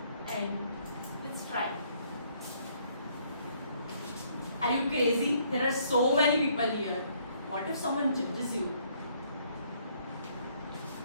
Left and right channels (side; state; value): both; inverted; correlation -0.66